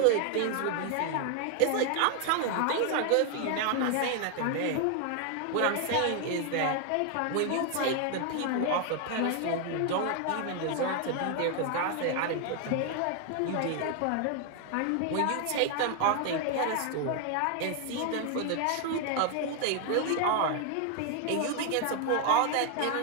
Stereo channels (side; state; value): both; different; correlation 0.00